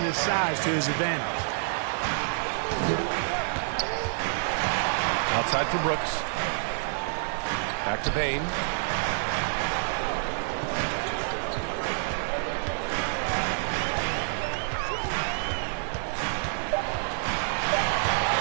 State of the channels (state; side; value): silent; left; digital silence